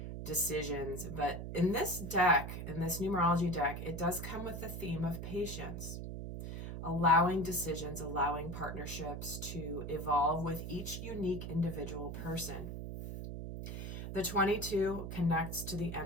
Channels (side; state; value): right; noise; hum, 6 dB below the sound